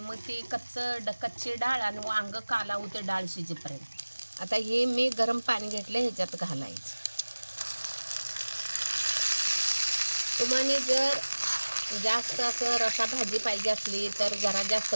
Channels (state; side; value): inverted; both; correlation -1.00